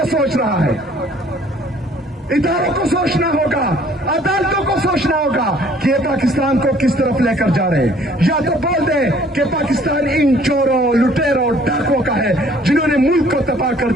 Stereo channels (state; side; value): normal; both; correlation 0.57